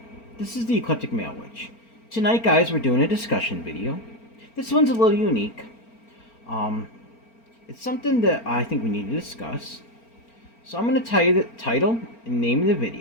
This is the Eclectic Male Witch. Tonight, guys, we're doing a discussion video. This one's a little unique. It's something that I think we need to discuss. So I'm going to tell you the title and name of the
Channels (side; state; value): right; late; 4.4 ms